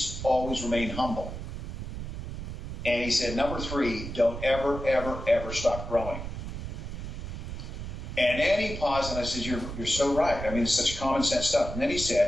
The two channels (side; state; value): right; noise; rumble, 7 dB below the sound